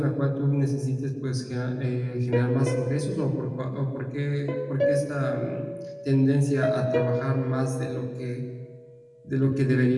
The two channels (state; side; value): identical; both; correlation 1.00